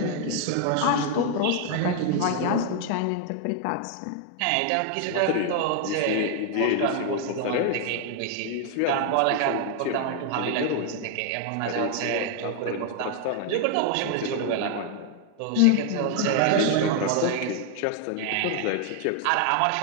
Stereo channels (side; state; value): both; different; correlation 0.00